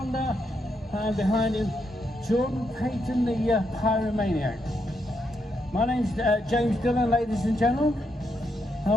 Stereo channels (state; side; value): normal; both; correlation 0.80